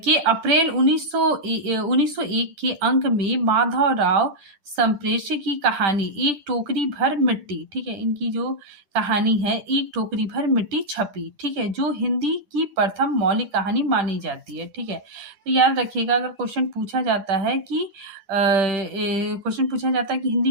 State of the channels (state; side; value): late; left; 10 ms